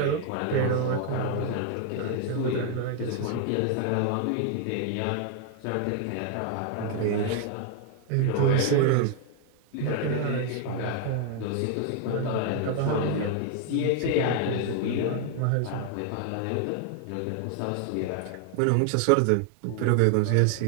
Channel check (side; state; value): both; different; correlation 0.00